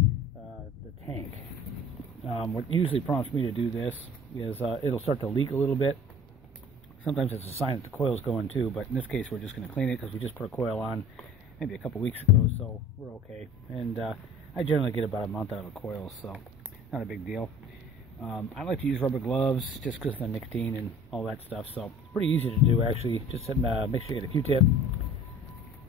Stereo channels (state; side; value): normal; both; correlation 0.46